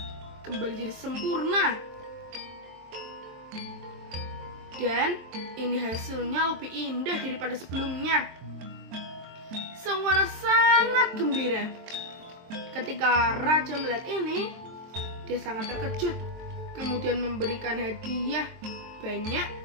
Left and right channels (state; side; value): late; left; 23 ms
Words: kembali jadi sempurna. Dan ini hasilnya lebih indah daripada sebelumnya. Sang Wana sangat gembira. Ketika raja melihat ini, dia sangat terkejut. Kemudian memberikan hadiah banyak